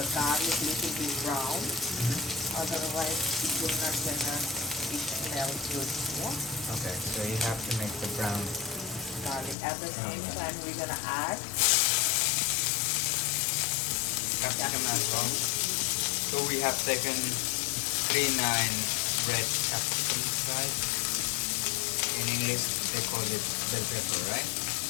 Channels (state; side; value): drops out; right; at 9.6 s